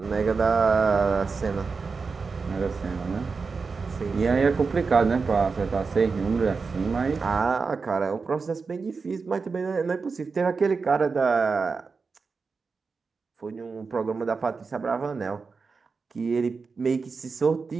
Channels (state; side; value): quieter; left; 4.7 dB